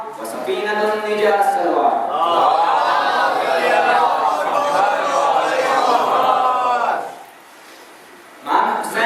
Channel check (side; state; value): both; identical; correlation 1.00